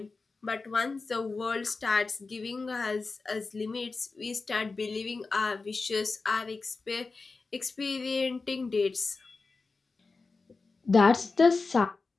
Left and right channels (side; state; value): right; quieter; 4.0 dB